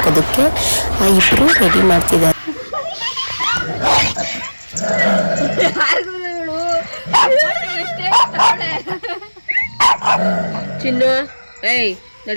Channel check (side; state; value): both; inverted; correlation -1.00